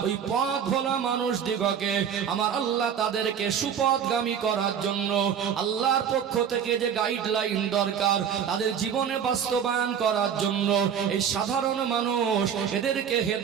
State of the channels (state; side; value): quieter; left; 8.1 dB